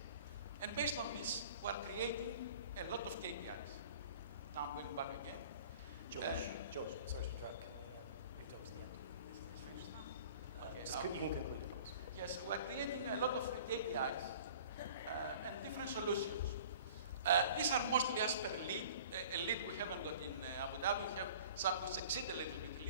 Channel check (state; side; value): inverted; both; correlation -0.46